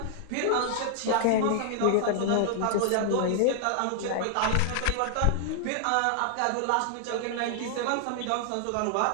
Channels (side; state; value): both; different; correlation -0.01